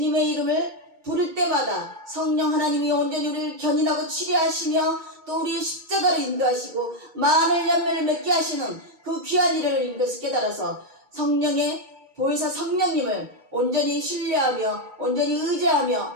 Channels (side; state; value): left; late; 2.2 ms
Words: 이름을 부를 때마다 성령 하나님이 온전히 우리를 견인하고 치료하시며 또 우리의 십자가를 인도하시고 많은 열매를 맺게 하시는 그 귀한 일을 인도해서 깨달아서 성령의 보혜사 성령님을 온전히 신뢰하며 온전히